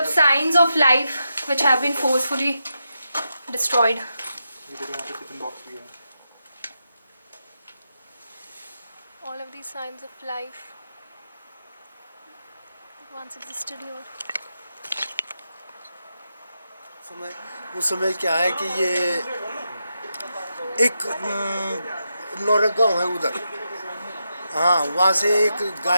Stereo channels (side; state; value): both; inverted; correlation -0.86